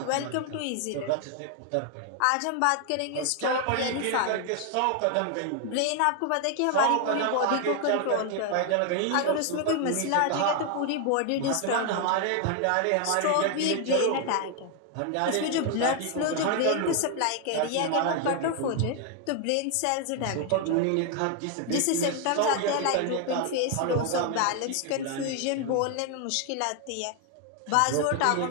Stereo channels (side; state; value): both; different; correlation 0.01